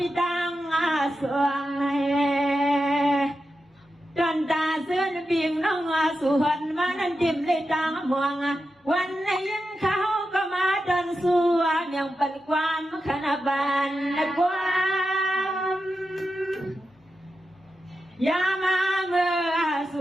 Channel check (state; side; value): normal; both; correlation 0.89